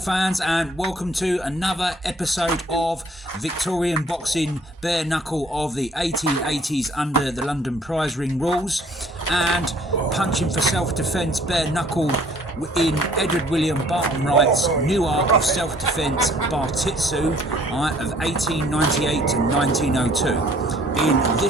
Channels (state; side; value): normal; both; correlation 0.58